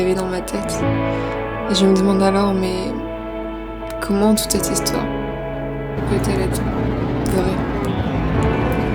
dans ma tête. Et je me demande alors, mais comment toute cette histoire peut-elle être vraie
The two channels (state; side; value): identical; both; correlation 1.00